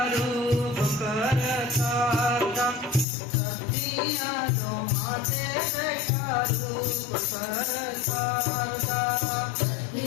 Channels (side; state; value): right; drops out; at 3.1 s